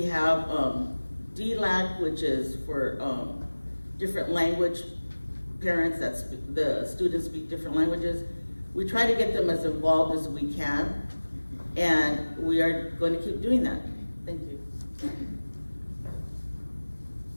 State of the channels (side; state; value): both; inverted; correlation -1.00